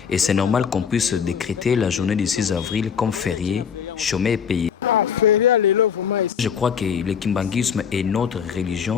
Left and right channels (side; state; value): right; quieter; 7.3 dB